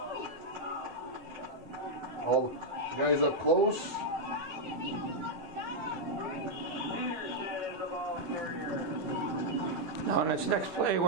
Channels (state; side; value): normal; both; correlation -0.02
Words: All the guys up close. Now in this next play,